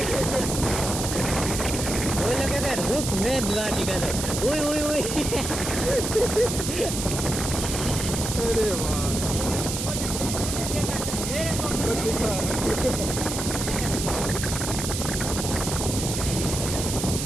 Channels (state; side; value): noise; right; hiss, 4 dB below the sound